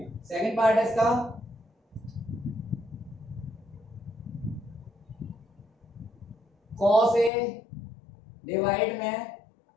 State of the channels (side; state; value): right; drops out; at 7.3 s